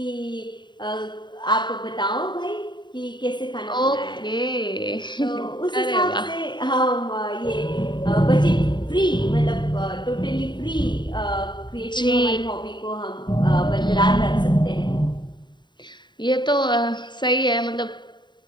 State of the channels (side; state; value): right; late; 0.22 ms